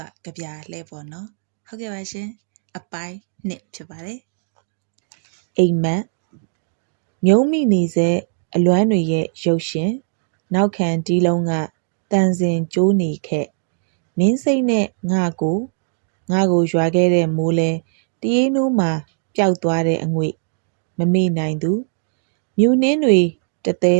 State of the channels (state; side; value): silent; left; digital silence